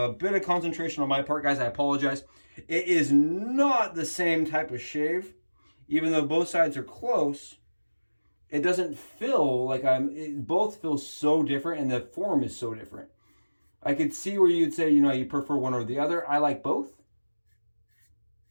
bit of concentration on my part, guys. I apologize. It is not the same type of shave. Even though both sides are close, it doesn't feel like both feel so different, and the form is so different. I could see where you'd say, you know, you prefer one or the other. I like both.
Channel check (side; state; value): both; inverted; correlation -1.00